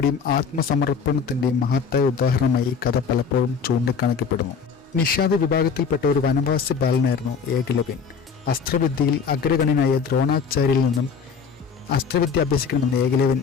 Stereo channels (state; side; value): quieter; right; 5.9 dB